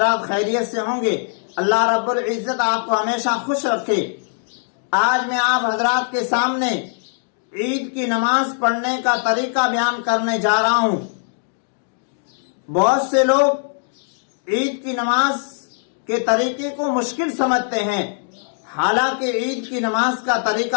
खैरियत से होंगे। अल्लाह रब्बुल इज्जत आपको हमेशा खुश रखे। आज मैं आप हजरात के सामने ईद की नमाज पढ़ने का तरीका बयान करने जा रहा हूँ। बहुत से लोग ईद की नमाज के तरीके को मुश्किल समझते हैं, हालांकि ईद की नमाज का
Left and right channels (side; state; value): right; silent; digital silence